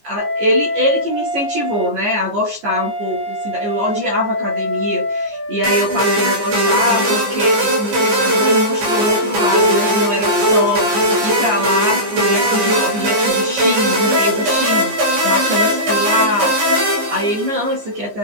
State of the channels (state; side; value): late; left; 14 ms